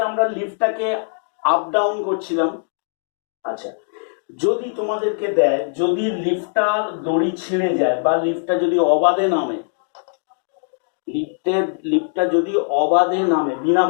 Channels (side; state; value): right; silent; digital silence